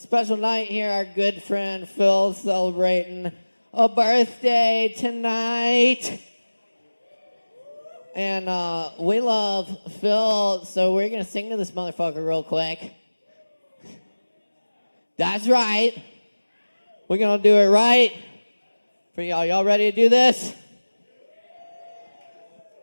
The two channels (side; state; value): both; inverted; correlation -1.00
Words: night here. Our good friend Phil celebrating a birthday tonight. And we love Phil, so we're going to sing to this motherfucker real quick. That's right. We're going to do it right for y'all. Y'all ready to do this?